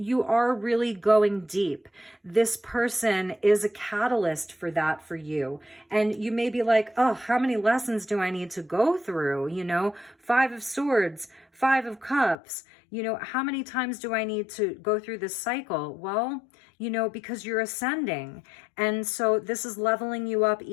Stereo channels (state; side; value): drops out; right; at 12.4 s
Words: are really going deep. This person is a catalyst for that for you. And you may be like, oh, how many lessons do I need to go through? Five of Swords, Five of Cups. How many times do I need to go through this cycle? Well, because you're ascending. And so this is leveling you up